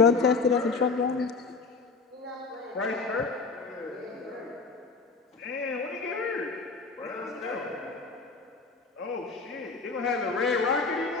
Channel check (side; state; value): right; quieter; 4.4 dB